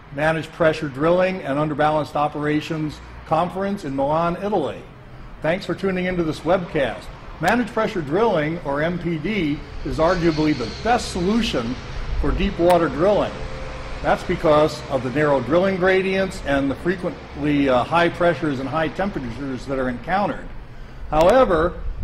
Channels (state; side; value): identical; both; correlation 1.00